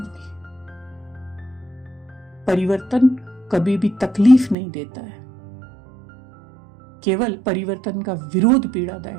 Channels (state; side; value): drops out; left; at 4.5 s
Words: परिवर्तन कभी भी तकलीफ नहीं देता है, केवल परिवर्तन का विरोध